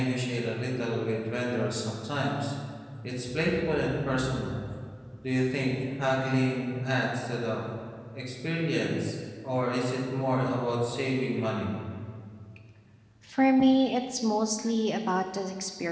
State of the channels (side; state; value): both; identical; correlation 1.00